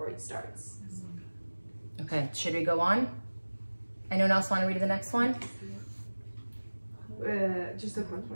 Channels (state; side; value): inverted; both; correlation -1.00